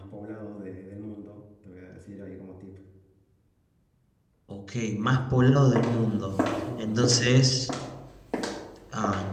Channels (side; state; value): both; identical; correlation 1.00